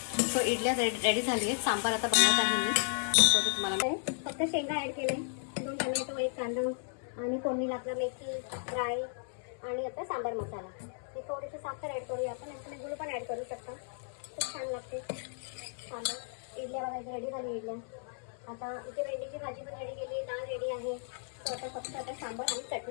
सो इडल्या रेडी झाली आहेत, सांबार आता बनवत आहे मी. सो ते तुम्हाला फक्त शेंगा ॲड केले, 2 टोमॅटो, 1 कांदा आणि फोडणीला आपला मेथी, राई आणि आता सांबार मसाला. हे थोडीशी साखर ॲड करूया आपण, आणि गुळ पण ॲड करू शकता, खूप छान लागते सांबार. इडल्या बघायच्या रेडी झाली इडल्या. आता इथे भेंडीची भाजी पण रेडी केली, डाळ रेडी आहे. सो आता फक्त आता सांबार आणि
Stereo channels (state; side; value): silent; right; 55 dB below the other